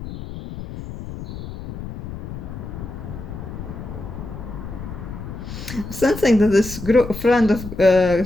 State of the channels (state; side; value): noise; left; rumble, 10 dB below the sound